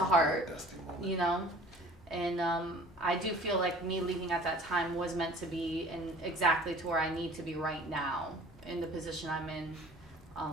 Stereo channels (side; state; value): both; normal; correlation 0.47